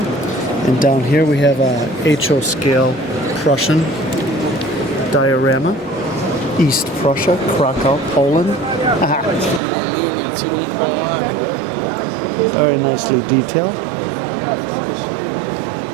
And down here we have a HO scale Prussian diorama, East Prussia, Krakow, Poland. Very nicely detailed.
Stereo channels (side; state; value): left; drops out; at 9.6 s